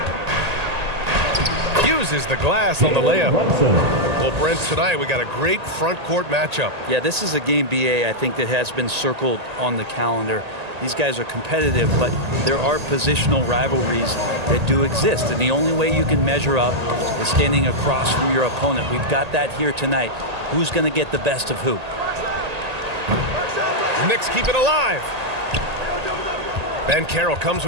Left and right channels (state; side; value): late; left; 1.8 ms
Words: Uses the glass on the layup. Well, Brent, tonight we got a great front court matchup. Yeah, this is a game, BA, I think that has been circled on the calendar. These guys are competitive, but there are positional rivalries that do exist, and the only way you can measure up is standing across from your opponent. We've got that here tonight. Who's going to get the best of who? The Knicks keep it alive. Banchero comes